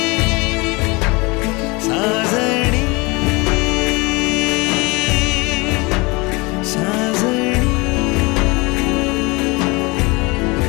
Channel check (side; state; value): right; quieter; 25.9 dB